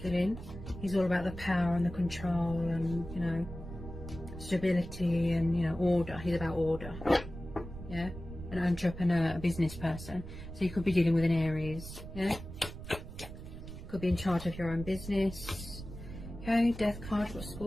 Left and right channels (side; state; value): right; noise; rumble, 11 dB below the sound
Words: He's all about the power and the control and, you know, stability and, you know, order. He's about order. Yeah, an entrepreneur, a business person. So you could be dealing with an Aries. Yeah, could be in charge of your own business. Okay, Death card for